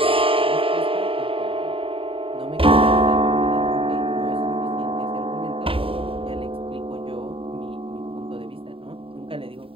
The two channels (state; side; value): late; left; 0.26 ms